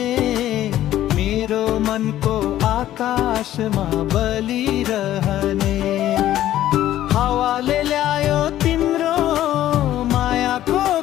मेरो मनको आकाशमा बलिरहने। हावाले ल्यायो तिम्रो मायाको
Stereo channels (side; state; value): right; quieter; 13.1 dB